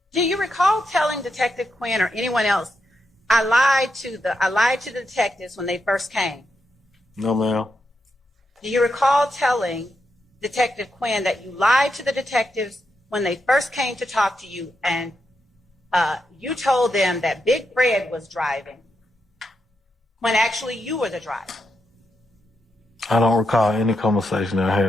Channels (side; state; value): both; normal; correlation 0.84